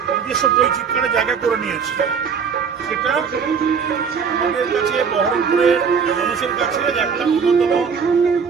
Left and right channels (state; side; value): quieter; left; 6.3 dB